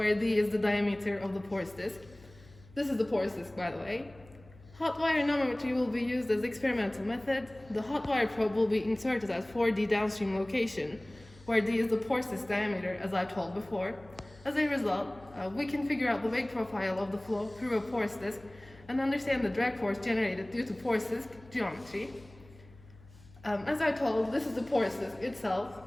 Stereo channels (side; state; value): left; noise; hum, 23 dB below the sound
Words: D is the diameter of the porous disk. This is the porous disk, by the way. Hot wire anemometry will be used as experimental method. The hot wire probe will be inserted at 4D downstream location, where D is the porous disk diameter, as I told before. As a result, we can figure out the wake profile of the flow through a porous disk and understand the drag force generated due to porous disk geometry. As I told, this is the porous disk